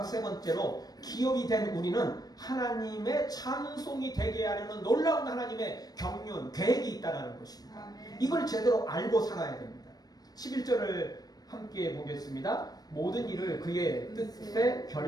세 번째로 기업이 된 우리는 하나님의 찬송이 되게 하려는 놀라운 하나님의 경륜, 계획이 있다는 것입니다. 이걸 제대로 알고 살아야 됩니다. 11절을 함께 보겠습니다. 모든 일을 그의 뜻의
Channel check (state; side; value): late; right; 0.19 ms